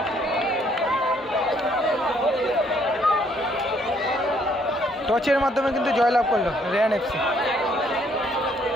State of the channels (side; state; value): both; normal; correlation 0.67